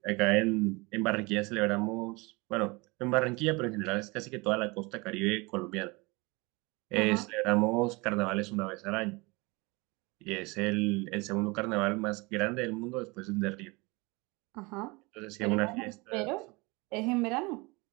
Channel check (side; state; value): left; quieter; 25.9 dB